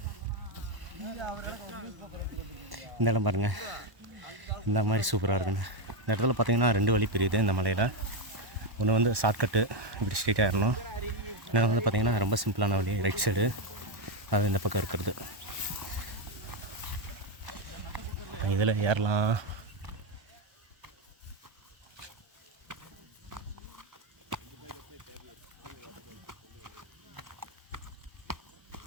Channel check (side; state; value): left; late; 1.1 ms